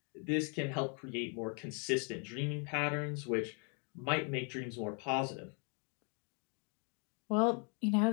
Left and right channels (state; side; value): quieter; right; 38.2 dB